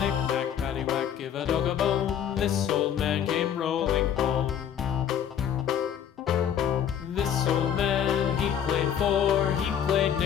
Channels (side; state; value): right; quieter; 9.1 dB